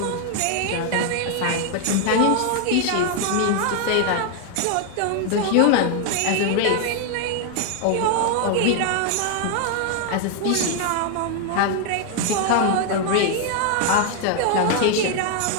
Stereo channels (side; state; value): both; different; correlation 0.00